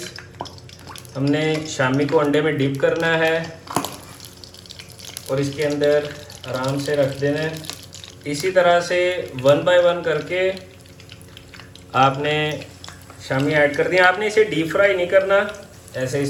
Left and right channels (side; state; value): both; identical; correlation 1.00